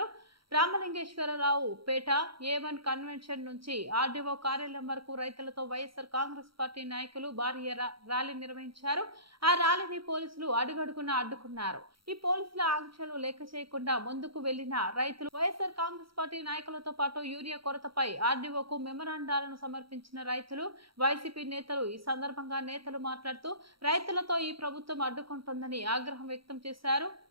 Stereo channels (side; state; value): left; late; 0.74 ms